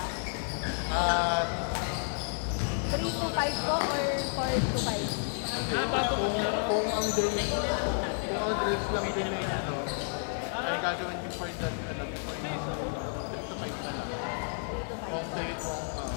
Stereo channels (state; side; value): silent; right; 57 dB below the other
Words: 3 to 5 po or 4 to 5? Kung ang drills lang din eh, ano, ay gagawin before that, ano, 3 to 5 na lang. 3 to 5 Kung po. 3,